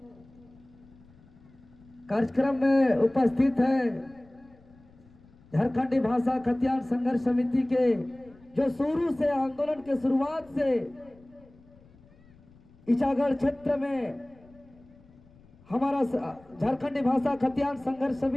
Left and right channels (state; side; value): noise; left; rumble, 27 dB below the sound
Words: कार्यक्रम में उपस्थित है झारखंडी भाषा खतियान संघर्ष समिति के, जो शुरू से आंदोलन के शुरुआत से इचागढ़ क्षेत्र में हमारा झारखंडी भाषा खतियान संघर्ष